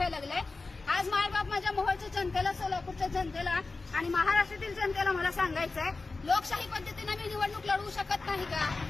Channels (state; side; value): quieter; right; 3.7 dB